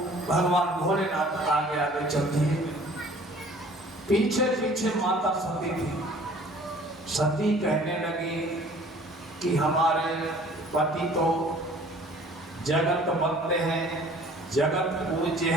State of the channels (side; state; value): both; normal; correlation 0.51